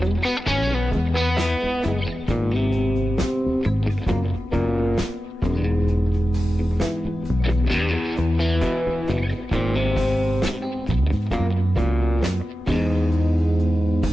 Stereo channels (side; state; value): both; normal; correlation 0.93